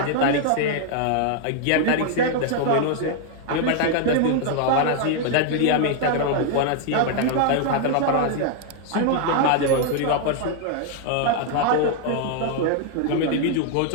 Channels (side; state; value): both; different; correlation 0.00